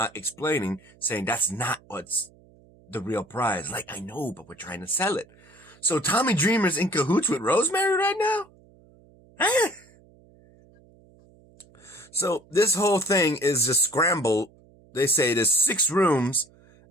explaining, saying that's not what's the real prize. Like, I know, but we're trying to sell it. So Tommy Dreamer's in cahoots with Rosemary right now? Huh? So this whole thing is just scrambled. They say there's 6 rooms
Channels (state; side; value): noise; right; hum, 28 dB below the sound